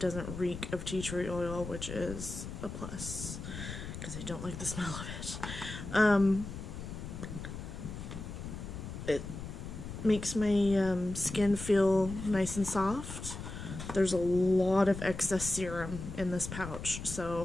reek of tea tree oil, which is a plus, because I don't like the smell of it. It makes my skin feel nice and soft. There's a lot of excess serum in this pouch,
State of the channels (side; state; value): left; noise; rumble, 8 dB below the sound